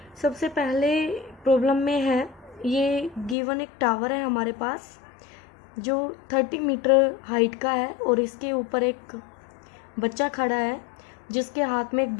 सबसे पहले प्रॉब्लम में है, ये गिवन एक टावर है हमारे पास जो 30 मीटर हाइट का है और इसके ऊपर एक बच्चा खड़ा है जिसके हाथ में एक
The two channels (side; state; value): right; drops out; at 3.4 s